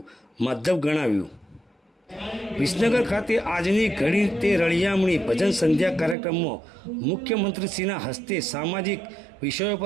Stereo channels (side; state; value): left; drops out; at 6.2 s